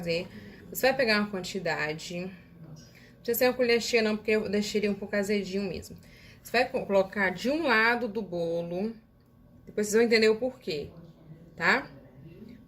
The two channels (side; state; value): both; identical; correlation 1.00